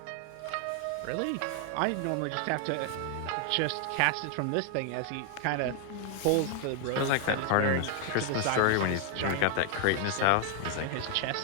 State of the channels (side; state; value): both; different; correlation 0.00